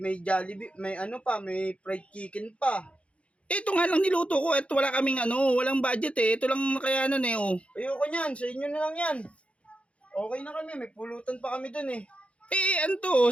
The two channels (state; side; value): late; right; 0.061 ms